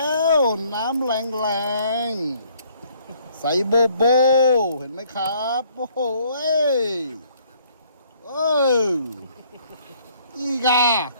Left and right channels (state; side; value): inverted; both; correlation -0.63